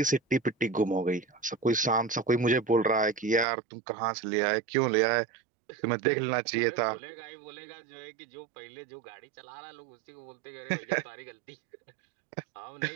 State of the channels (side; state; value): left; drops out; at 3.5 s